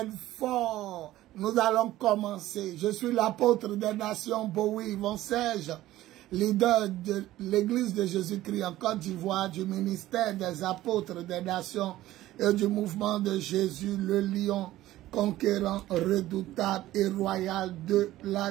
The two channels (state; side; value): quieter; left; 15.3 dB